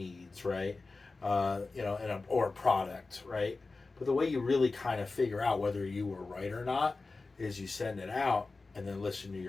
right? Or a product, right? But the way you really kind of figure out whether you were right or not is you send it out and then listen to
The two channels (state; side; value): quieter; right; 3.7 dB